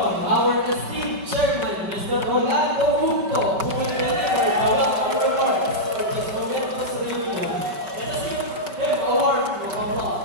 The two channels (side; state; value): left; late; 5.0 ms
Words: our esteemed chairman, Mr. Rolando Junco, who will deliver the welcome remarks for this momentous reunion. Let us give him a warm